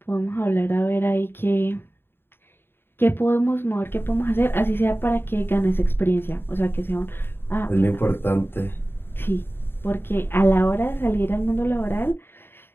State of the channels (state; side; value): late; right; 0.11 ms